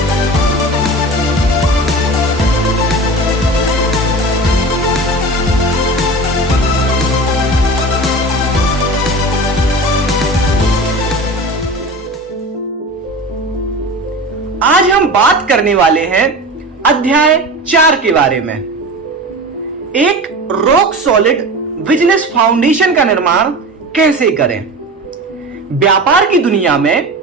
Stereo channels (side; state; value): both; normal; correlation 0.32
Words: आज हम बात करने वाले हैं अध्याय 4 के बारे में। एक रॉक सॉलिड बिजनेस फाउंडेशन का निर्माण कैसे करें। व्यापार की दुनिया में